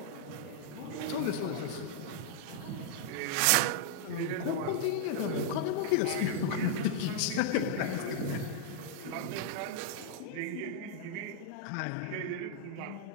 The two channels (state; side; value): different; both; correlation -0.01